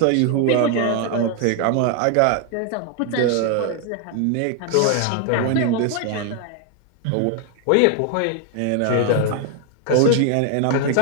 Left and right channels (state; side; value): different; both; correlation 0.00